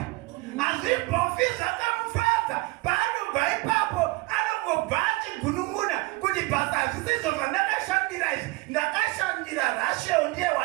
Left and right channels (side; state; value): left; quieter; 22.3 dB